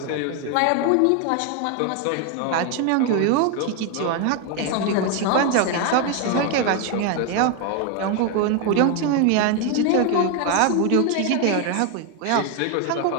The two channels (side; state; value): both; different; correlation 0.01